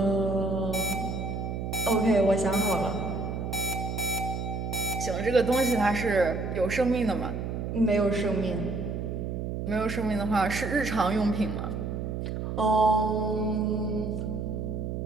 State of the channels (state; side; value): noise; right; hum, 4 dB below the sound